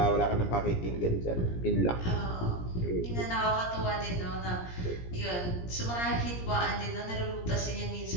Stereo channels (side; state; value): right; late; 17 ms